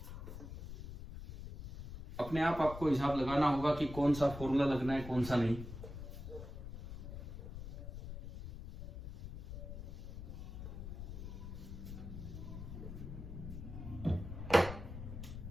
अपने आप आपको हिसाब लगाना होगा कि कौन सा फॉर्मूला लगना है कौन सा नहीं।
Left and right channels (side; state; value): left; noise; rumble, 9 dB below the sound